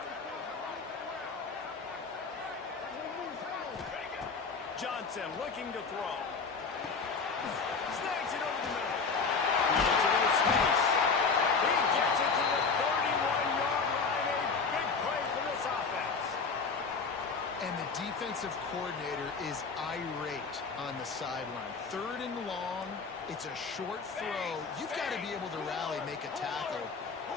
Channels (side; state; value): right; quieter; 4.9 dB